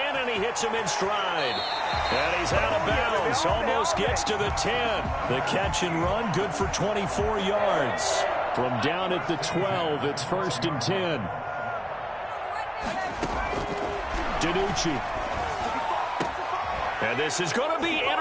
and he hits him in stride. And he's out of bounds, almost gets to the 10. The catch and run, good for 24 yards. From down at the 12, it's 1st and 10. DiNucci. And this is going to be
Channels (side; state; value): both; identical; correlation 1.00